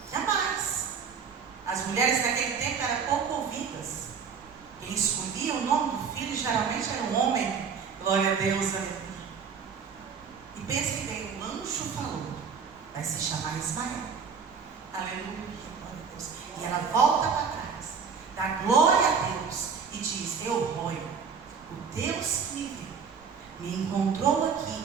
Jamais. As mulheres naquele tempo eram pouco ouvidas. Quem escolhia o nome do filho geralmente era um homem. Glória a Deus, aleluia. E pense bem, o anjo falou, vai se chamar Ismael. Aleluia, glória a Deus. E ela volta para trás, dá glória a Deus e diz: Elroi, o Deus que me viu, me encontrou aqui,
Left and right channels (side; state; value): left; quieter; 6.1 dB